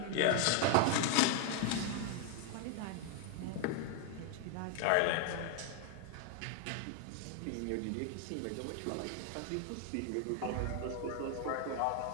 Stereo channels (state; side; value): different; both; correlation 0.00